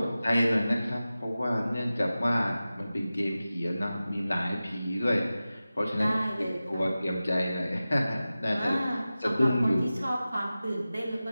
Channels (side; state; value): both; inverted; correlation -0.95